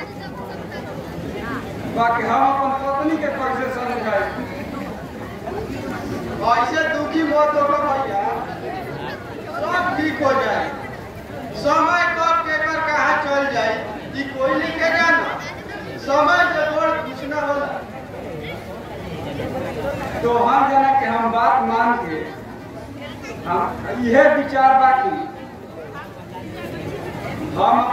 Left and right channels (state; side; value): identical; both; correlation 1.00